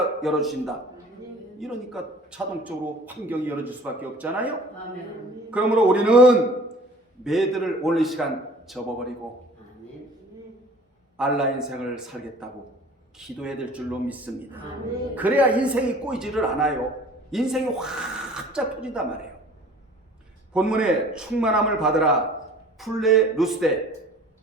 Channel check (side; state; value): both; normal; correlation 0.48